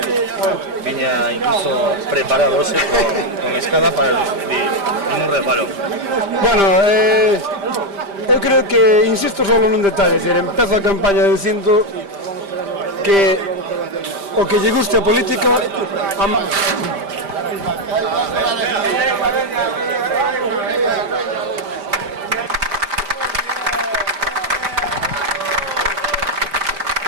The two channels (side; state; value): left; late; 5.0 ms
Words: viña incluso preparado hoxe con escada para recibir ningún reparo. Bueno, eu creo que insisto solo nun detalle, empezo a campaña dicindo que o que lle guste a política